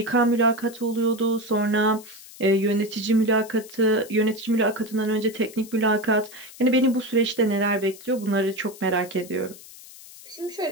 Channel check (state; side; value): noise; left; hiss, 18 dB below the sound